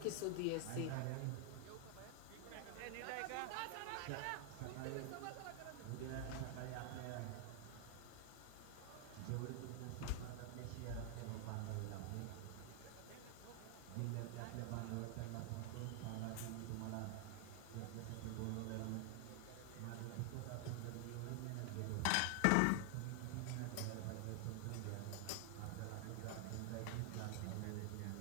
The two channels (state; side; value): different; both; correlation 0.00